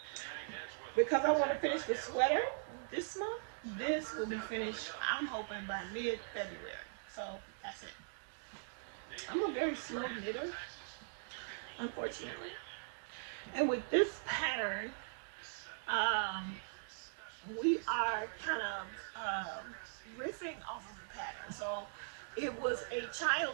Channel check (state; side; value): silent; left; digital silence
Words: because I want to finish the sweater this month, this will be finished, I'm hoping, by mid-February. So that's it. I'm a very slow knitter, unfortunately. And with this pattern, we are kind of riffing off of the pattern. So it was a